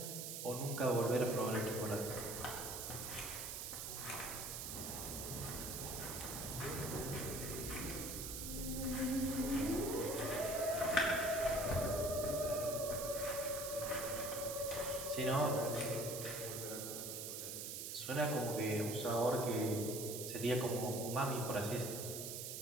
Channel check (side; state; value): right; noise; hiss, 5 dB below the sound